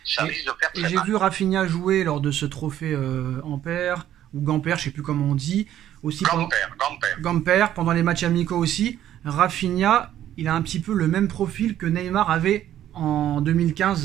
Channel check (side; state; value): left; quieter; 11.8 dB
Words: Ça risque de faire très mal. Et j'ai vu Rafinha jouer lors de ce trophée Ampère, ou Gamper, je sais plus comment on dit. Aussi Gamper, pendant les matchs amicaux aussi. Rafinha, il a un petit peu le même profil que Neymar avait en